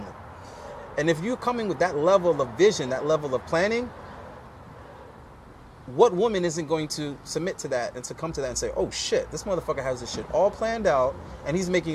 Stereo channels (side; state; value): both; identical; correlation 1.00